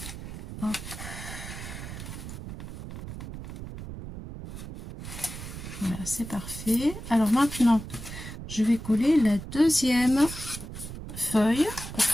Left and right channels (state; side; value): noise; right; rumble, 10 dB below the sound